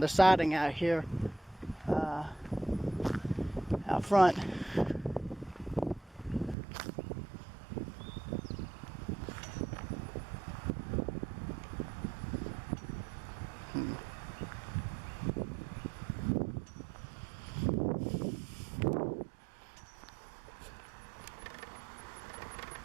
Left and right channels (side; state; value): left; drops out; at 6.6 s